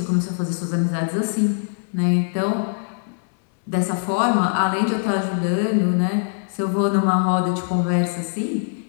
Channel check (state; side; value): silent; right; digital silence